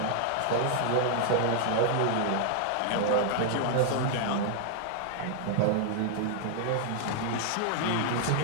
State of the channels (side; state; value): both; different; correlation 0.00